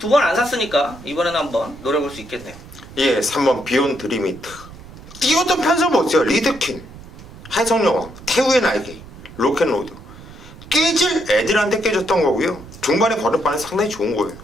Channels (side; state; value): right; noise; rumble, 18 dB below the sound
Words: 안 샀으니까 이번에는 한번 노려볼 수 있겠네요. 예, 3번 비욘드 리미트. 뛰었던 편성 보세요. 리드킨, 해성여왕, 태우의 날개, 로켓로드. 깨질 애들한테 깨졌던 거고요. 중반에 걸음반은 상당히 좋은 거예요.